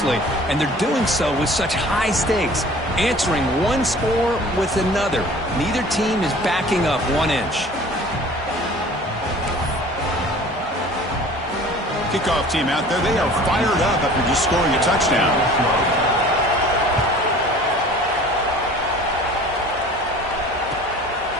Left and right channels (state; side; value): normal; both; correlation 0.46